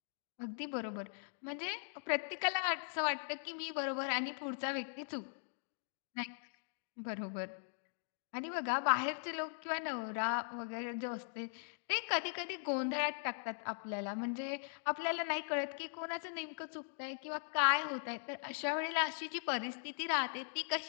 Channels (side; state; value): right; silent; digital silence